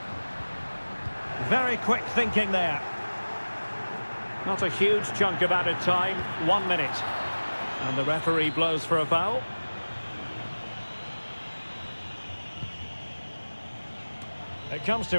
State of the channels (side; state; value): both; inverted; correlation -1.00